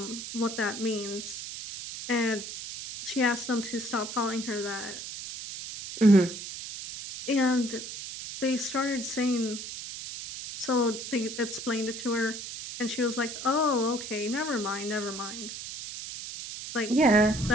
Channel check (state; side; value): noise; right; hiss, 9 dB below the sound